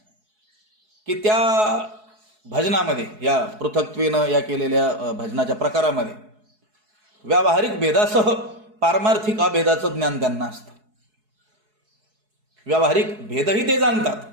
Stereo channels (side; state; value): left; late; 4.7 ms